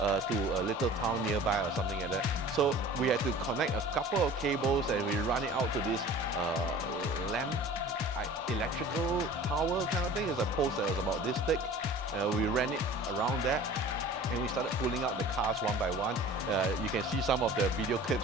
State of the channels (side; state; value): both; normal; correlation 0.43